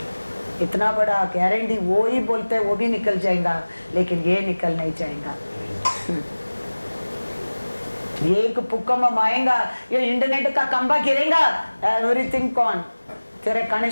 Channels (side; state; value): both; inverted; correlation -1.00